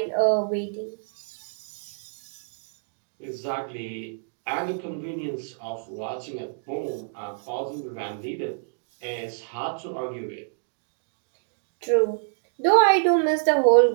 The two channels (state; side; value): silent; left; digital silence